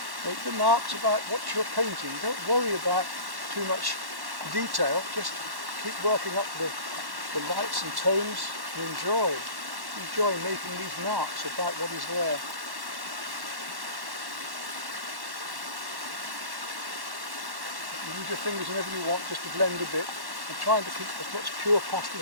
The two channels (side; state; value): left; late; 1.1 ms